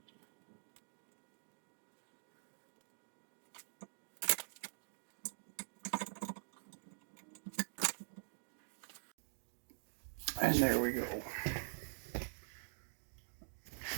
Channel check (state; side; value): silent; left; digital silence